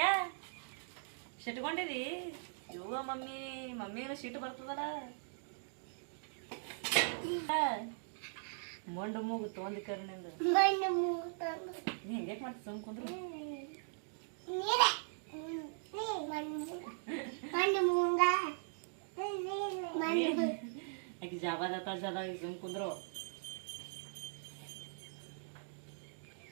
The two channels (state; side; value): silent; left; digital silence